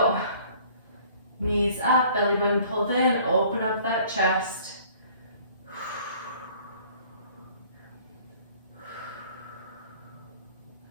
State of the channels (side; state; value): both; inverted; correlation -0.54